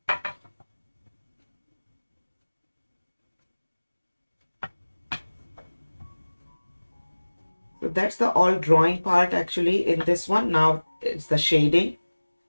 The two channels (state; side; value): inverted; both; correlation -1.00